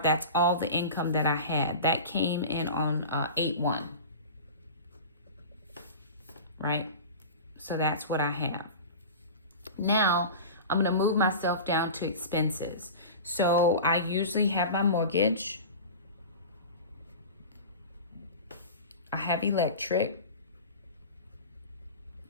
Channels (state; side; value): inverted; both; correlation -0.33